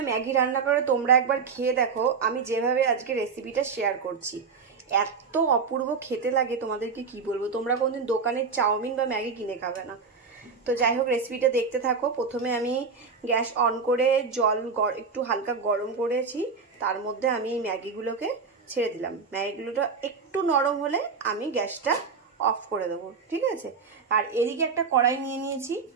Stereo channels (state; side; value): quieter; left; 5.3 dB